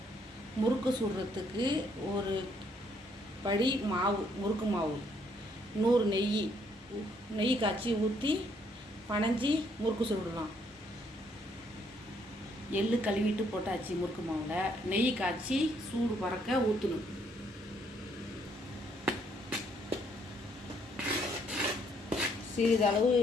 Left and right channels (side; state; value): both; normal; correlation 0.69